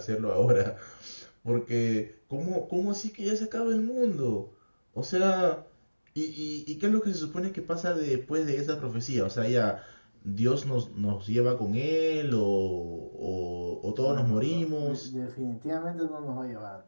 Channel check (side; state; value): both; inverted; correlation -1.00